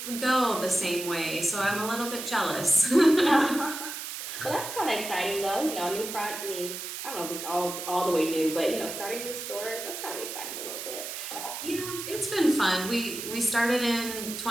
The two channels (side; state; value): right; noise; hiss, 7 dB below the sound